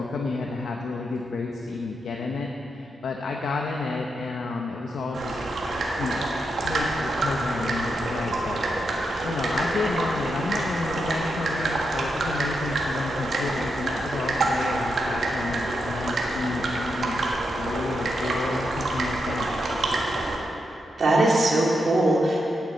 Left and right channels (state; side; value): normal; both; correlation 0.84